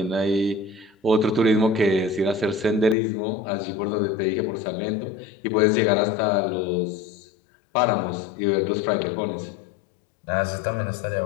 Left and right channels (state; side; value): drops out; right; at 3.0 s